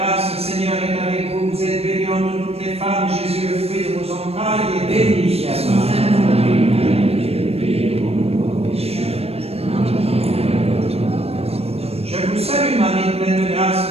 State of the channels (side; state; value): left; late; 0.29 ms